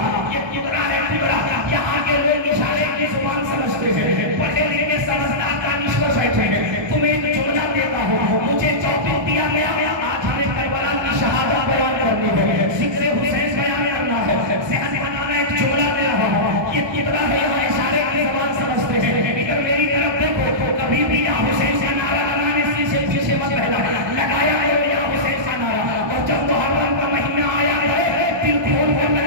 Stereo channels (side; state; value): left; late; 1.2 ms